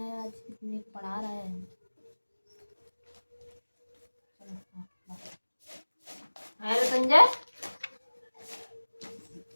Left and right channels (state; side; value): inverted; both; correlation -1.00